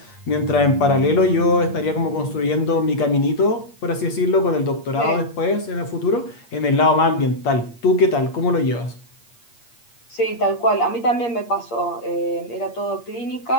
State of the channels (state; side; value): late; right; 8.5 ms